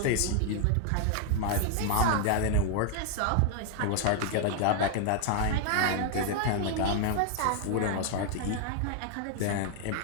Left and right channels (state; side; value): different; both; correlation 0.00